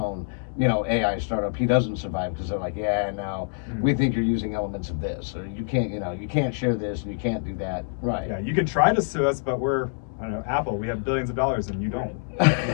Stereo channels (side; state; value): right; silent; digital silence